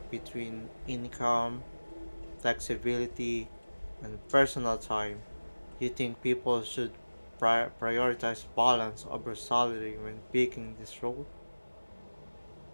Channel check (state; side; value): inverted; both; correlation -1.00